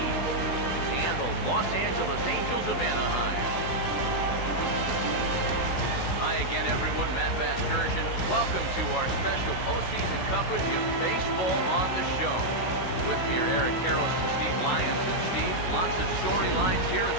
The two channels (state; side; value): late; right; 16 ms